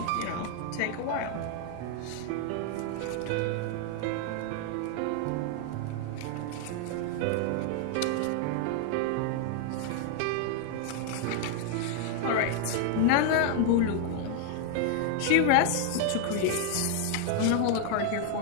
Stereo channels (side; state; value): both; different; correlation 0.00